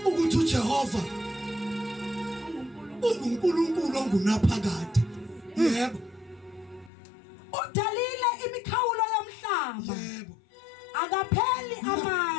ukuthi uJehova uNkulunkulu ongunaphakade. Yebo. udalile imikhawulo yomhlaba Yebo. akapheli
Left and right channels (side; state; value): right; drops out; at 6.9 s